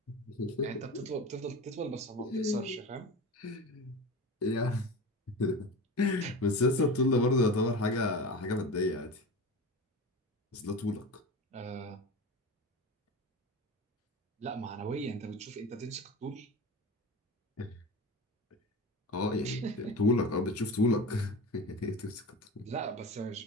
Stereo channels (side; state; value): both; normal; correlation 0.30